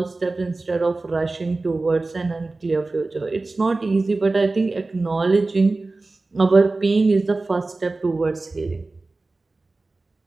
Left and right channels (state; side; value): quieter; left; 3.3 dB